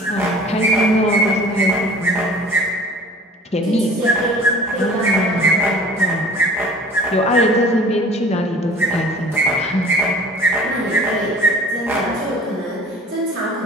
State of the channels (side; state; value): both; normal; correlation 0.46